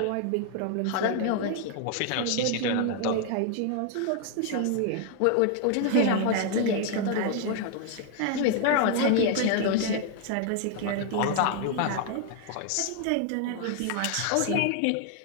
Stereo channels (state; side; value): different; both; correlation 0.00